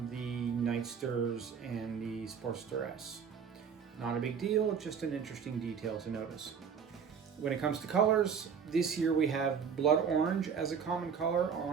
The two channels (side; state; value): left; quieter; 6.8 dB